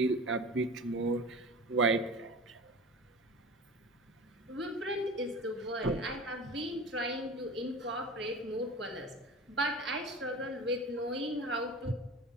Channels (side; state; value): both; normal; correlation 0.35